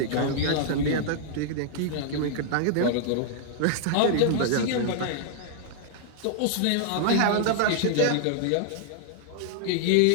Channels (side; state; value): both; different; correlation -0.01